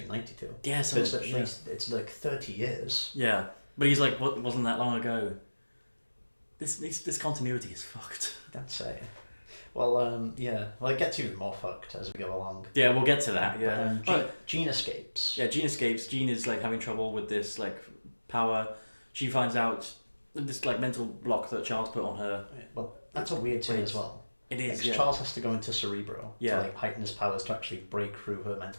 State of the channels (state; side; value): inverted; both; correlation -1.00